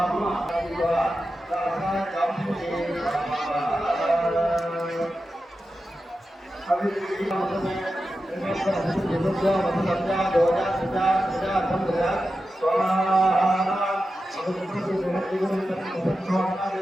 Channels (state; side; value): normal; both; correlation 0.91